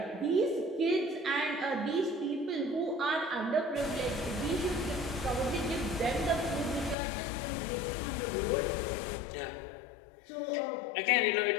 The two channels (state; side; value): drops out; right; at 7.0 s